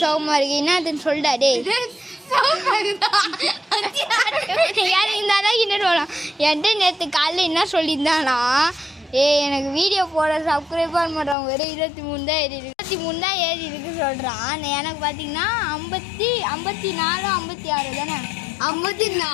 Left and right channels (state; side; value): drops out; right; at 11.4 s